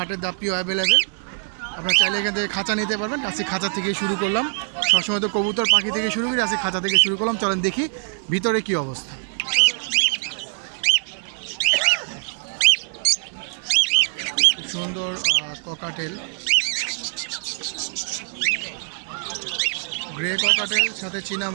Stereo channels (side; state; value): left; silent; 63 dB below the other